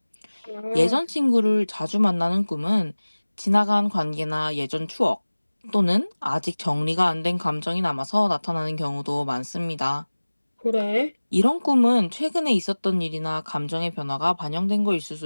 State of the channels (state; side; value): inverted; both; correlation -1.00